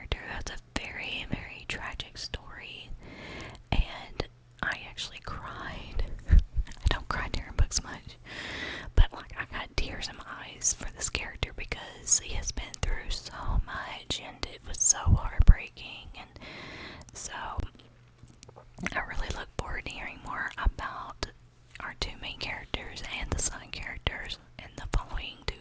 that's a very, very tragic story, and I actually cried. I don't cry during books much, but like, I got tears in my eyes for this character because he has been through so much, and it was so heartbreaking, and so I really look forward to hearing more about our two main characters and the side characters in the following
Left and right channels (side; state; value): both; identical; correlation 1.00